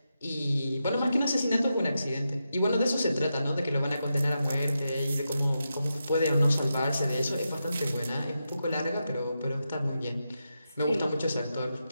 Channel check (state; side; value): inverted; both; correlation -0.87